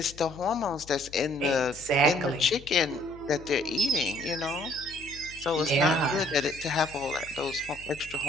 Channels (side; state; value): left; noise; hum, 20 dB below the sound